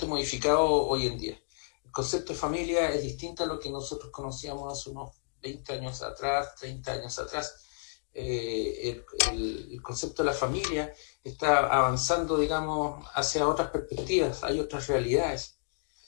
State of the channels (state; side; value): silent; right; digital silence